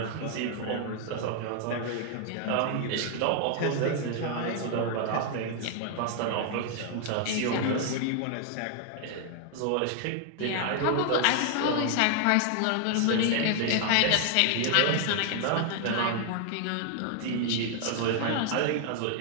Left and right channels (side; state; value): both; different; correlation 0.00